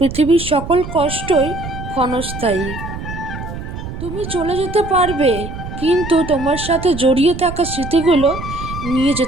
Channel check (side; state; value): right; noise; rumble, 9 dB below the sound